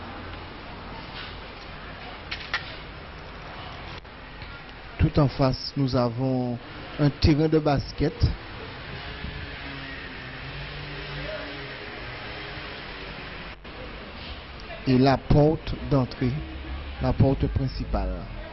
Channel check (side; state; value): both; identical; correlation 1.00